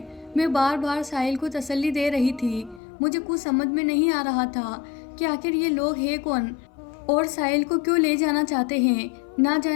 मैं बार बार साहिल को तसल्ली दे रही थी। मुझे कुछ समझ में नहीं आ रहा था कि आखिर ये लोग हैं कौन और साहिल को क्यों ले जाना चाहते हैं। ना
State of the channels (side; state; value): right; drops out; at 2.8 s